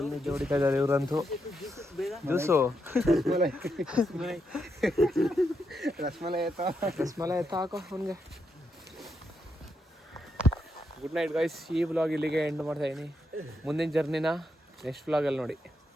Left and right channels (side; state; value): both; normal; correlation 0.82